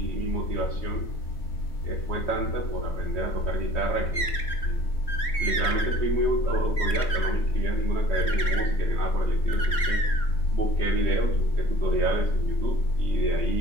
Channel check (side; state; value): right; late; 3.7 ms